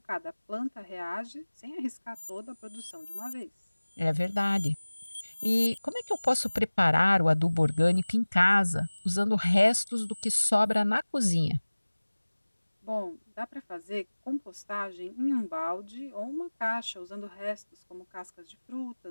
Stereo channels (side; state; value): both; inverted; correlation -1.00